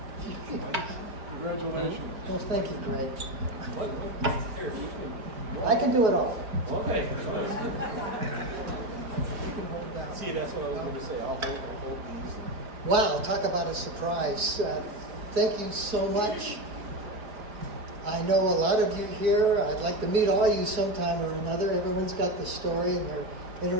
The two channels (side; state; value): left; late; 4.5 ms